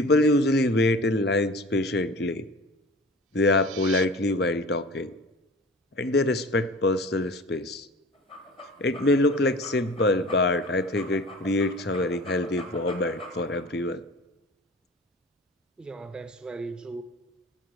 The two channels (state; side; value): normal; both; correlation 0.40